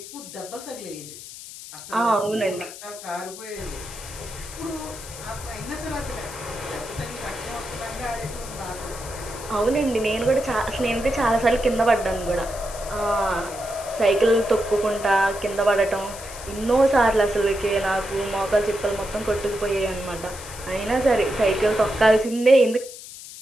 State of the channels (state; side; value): noise; left; hiss, 14 dB below the sound